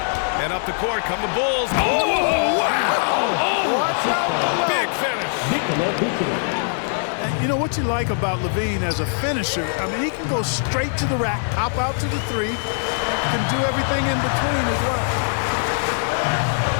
And up the court come the Bulls. Oh, wow! Oh, watch out below. Big finish. You know what you like about Levine as a finisher? I mean, he can go straight to the rack, hop out to the 3, can do everything in between as well.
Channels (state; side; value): silent; right; 64 dB below the other